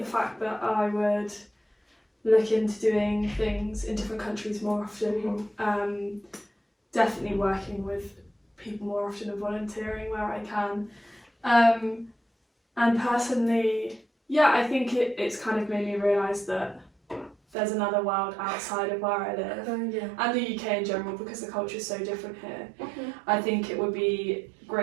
fact that I would look into doing things in different countries more often. Definitely working with people more often and volunteering where I can. And personally, yeah, I think it's kind of made me realise that there's another world outside of where I live. Yeah. And the UK in general, because the culture is so different here. Mm-hmm. I think it would be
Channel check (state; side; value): drops out; left; at 17.4 s